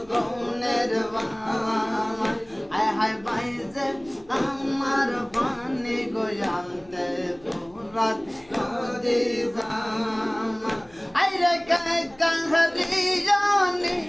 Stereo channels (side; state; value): left; noise; hum, 28 dB below the sound